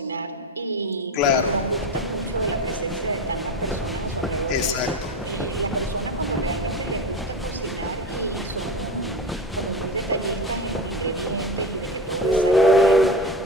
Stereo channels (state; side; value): normal; both; correlation 0.24